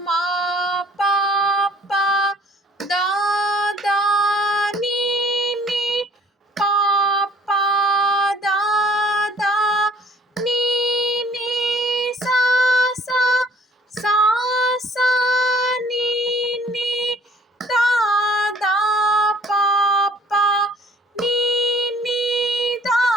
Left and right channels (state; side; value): normal; both; correlation 0.56